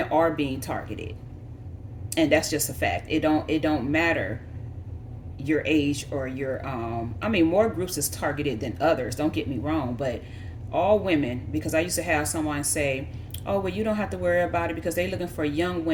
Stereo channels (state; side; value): identical; both; correlation 1.00